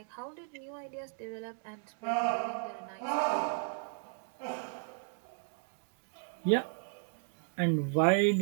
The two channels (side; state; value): left; silent; 54 dB below the other